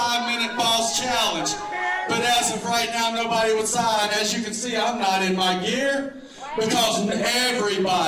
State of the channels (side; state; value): both; identical; correlation 1.00